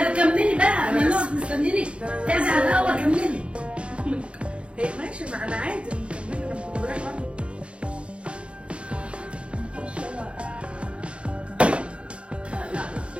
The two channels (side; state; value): left; late; 0.059 ms